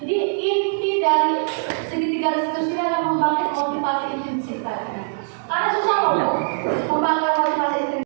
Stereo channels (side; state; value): left; silent; digital silence